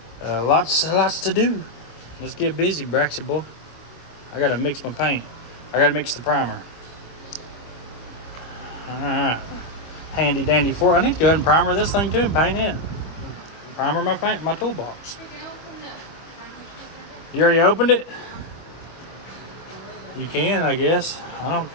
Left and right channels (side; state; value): right; late; 25 ms